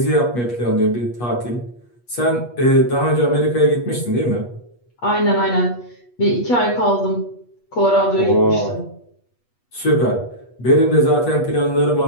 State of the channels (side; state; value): right; late; 8.3 ms